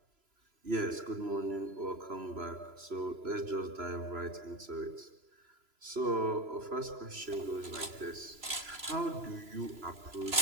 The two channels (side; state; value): left; late; 3.0 ms